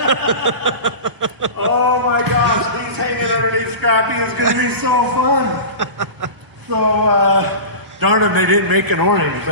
Oh my gosh, these hanging underneath Scrappy is going to be so fun. So, darn them, they didn't make an orange,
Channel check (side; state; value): left; late; 1.0 ms